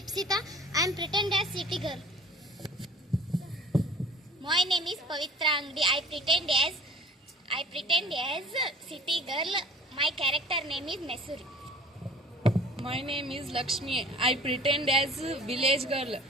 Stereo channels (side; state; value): both; normal; correlation 0.47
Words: I am pretend as city girl. My name is Pavitra Angdi. I pretend as city girl. My character name is Mesuri. My name is Lakshmi. I pretend as village girl.